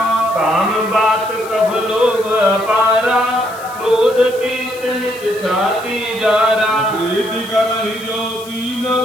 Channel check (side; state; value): left; noise; hiss, 19 dB below the sound